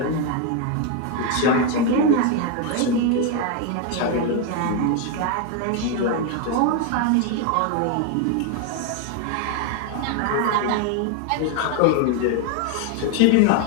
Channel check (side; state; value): both; different; correlation 0.01